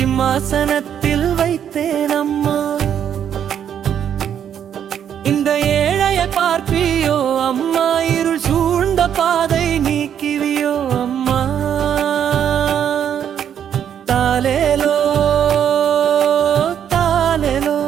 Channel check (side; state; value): left; quieter; 9.1 dB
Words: வைத்தேன் அம்மா இந்த ஏழையை பார்ப்பியோ அம்மா இருள் சூழ்ந்த பாதை நீக்கிவியோ அம்மா தாலேலோ தாலேலோ